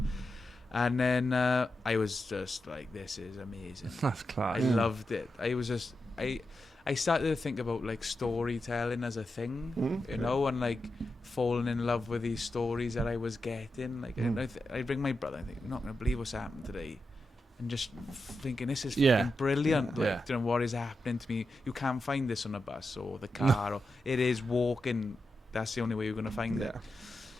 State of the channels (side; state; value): both; normal; correlation 0.88